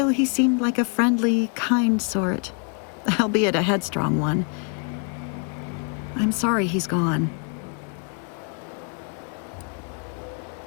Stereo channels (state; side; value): quieter; right; 39.4 dB